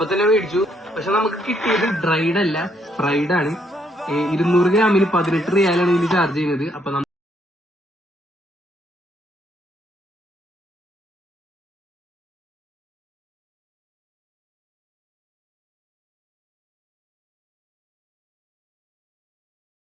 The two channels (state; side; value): normal; both; correlation 0.72